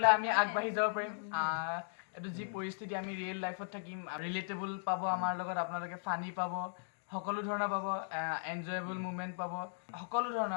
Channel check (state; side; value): silent; right; digital silence